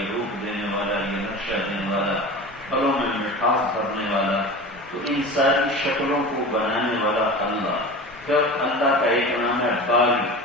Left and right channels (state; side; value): normal; both; correlation 0.33